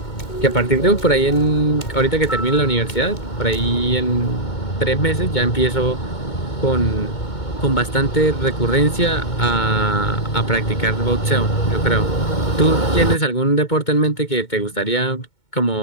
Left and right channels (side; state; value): right; late; 2.2 ms